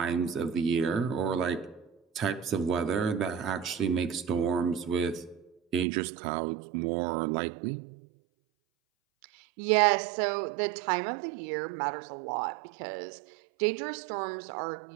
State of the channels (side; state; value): left; drops out; at 5.9 s